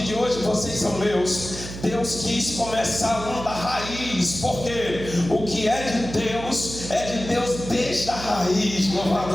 de hoje vocês são meus? Deus quis começar da raiz, porque o que é de Deus desde a raiz.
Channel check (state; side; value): noise; right; hum, 10 dB below the sound